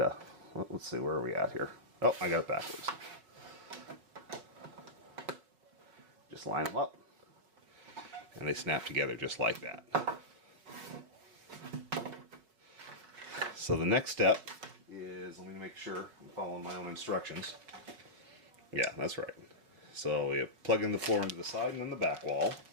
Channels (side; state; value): left; late; 5.0 ms